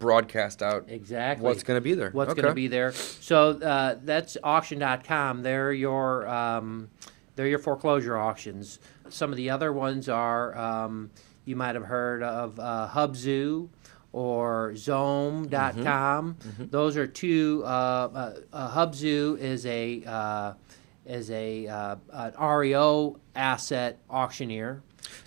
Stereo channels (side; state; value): left; quieter; 30.2 dB